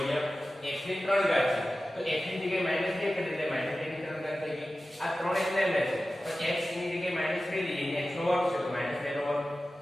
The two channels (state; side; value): normal; both; correlation 0.95